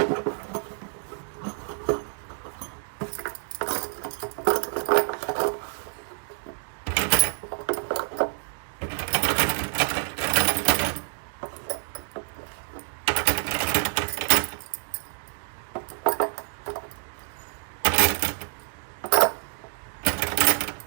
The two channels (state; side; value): silent; left; digital silence